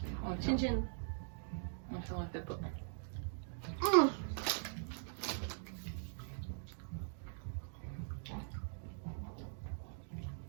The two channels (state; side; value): silent; left; digital silence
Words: Chin chin. Non, ça on le fait pas.